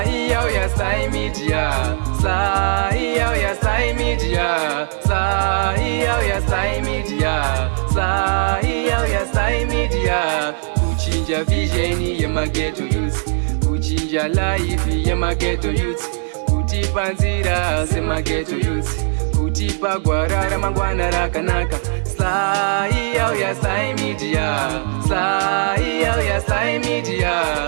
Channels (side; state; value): left; silent; 67 dB below the other